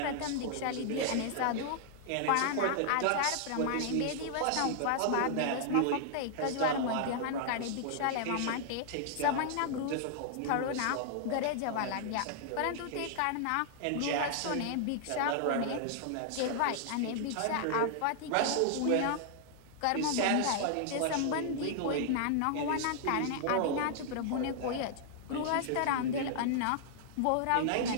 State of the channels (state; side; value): different; both; correlation -0.01